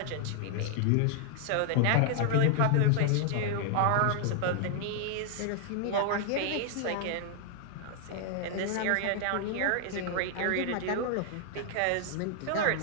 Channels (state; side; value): different; both; correlation 0.00